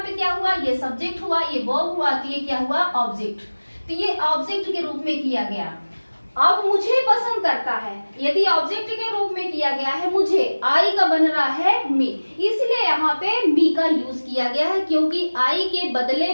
क्या हुआ? ये सब्जेक्ट हुआ, ये वर्ब हुआ, तो ये क्या हुआ? ऑब्जेक्ट। तो ये ऑब्जेक्ट के रूप में किया गया। अब मुझे पसंद करता है, यदि ऑब्जेक्ट के रूप में किया गया है मुझे, आई का बन रहा है मी, इसलिए यहाँ पे मी का यूज किया गया है, क्योंकि आई के बदले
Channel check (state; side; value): inverted; both; correlation -1.00